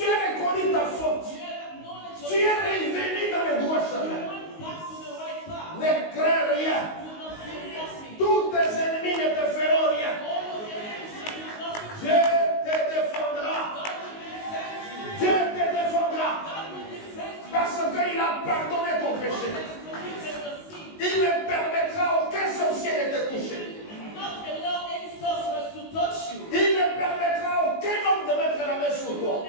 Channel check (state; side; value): late; right; 19 ms